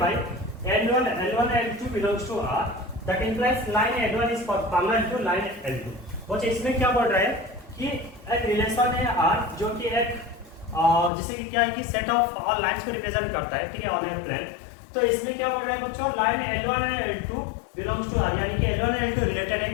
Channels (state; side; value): drops out; right; at 11.1 s